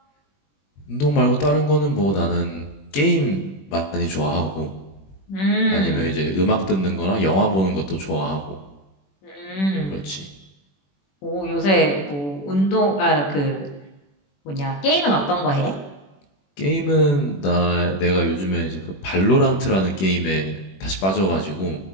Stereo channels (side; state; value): right; late; 21 ms